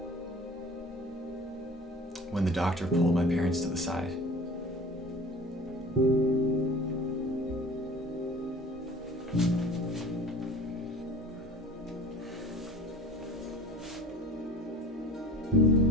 when the doctor pulled my parents to the side.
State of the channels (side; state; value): both; normal; correlation 0.43